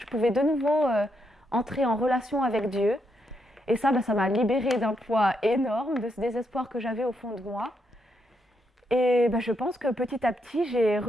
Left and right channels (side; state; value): both; normal; correlation 0.79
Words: pouvais de nouveau entrer en relation avec Dieu. Et ça, ça m'a libérée d'un poids énorme, de ce désespoir que j'avais au fond de moi. Et je pense que petit à petit, j'ai